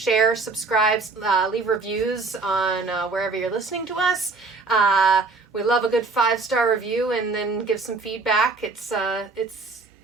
subscribe, leave reviews on wherever you're listening to us. We love a good 5-star review, and then give some feedback. It's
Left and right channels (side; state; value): left; quieter; 3.9 dB